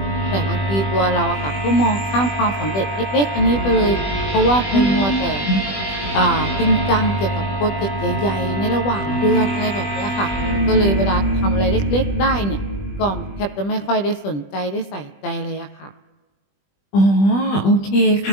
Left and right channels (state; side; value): late; right; 20 ms